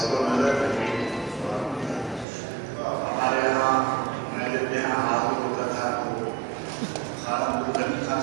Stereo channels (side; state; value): left; drops out; at 2.2 s